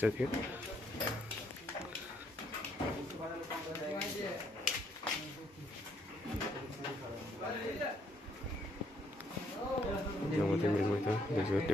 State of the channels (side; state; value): both; normal; correlation 0.70